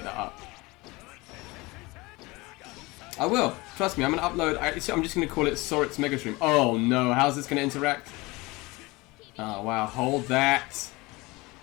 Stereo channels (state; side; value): quieter; right; 23.1 dB